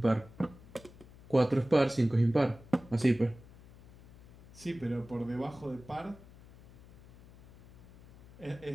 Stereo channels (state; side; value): noise; left; hum, 21 dB below the sound